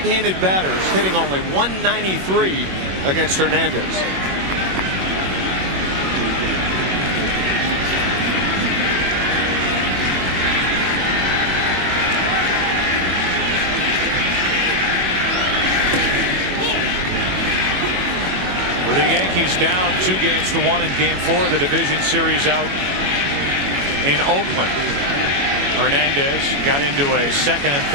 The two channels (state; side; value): late; left; 21 ms